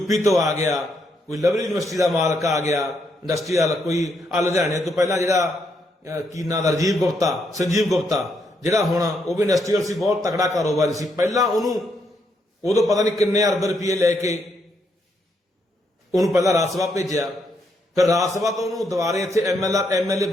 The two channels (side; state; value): both; normal; correlation 0.76